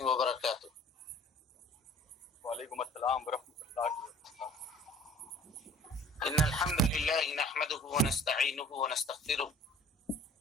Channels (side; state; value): both; normal; correlation 0.49